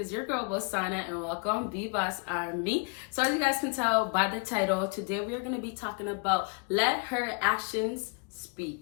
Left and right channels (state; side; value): quieter; right; 34.7 dB